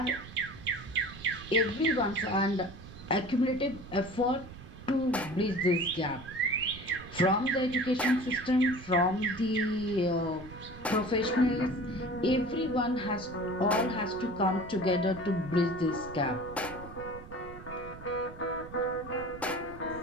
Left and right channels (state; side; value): noise; right; rumble, 15 dB below the sound